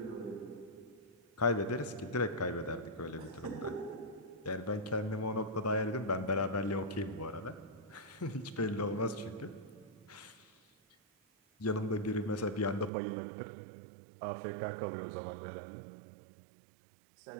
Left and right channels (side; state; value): left; drops out; at 12.9 s